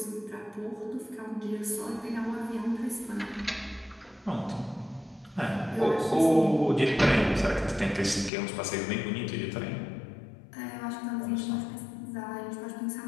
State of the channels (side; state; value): right; drops out; at 8.3 s